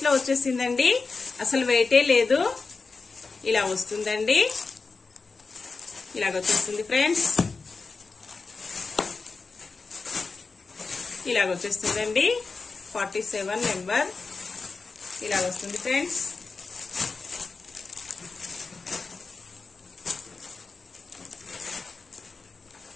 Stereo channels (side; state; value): right; quieter; 4.3 dB